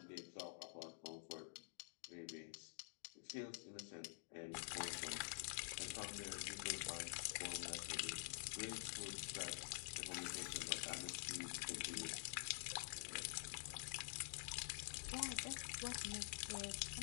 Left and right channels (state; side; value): silent; right; digital silence